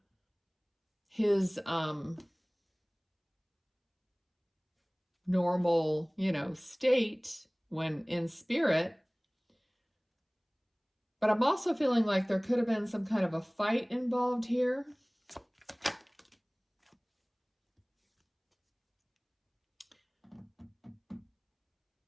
his normal, state when in spirit. But I'm also feeling like there could have been some kind of a fight involved here.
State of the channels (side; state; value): both; identical; correlation 1.00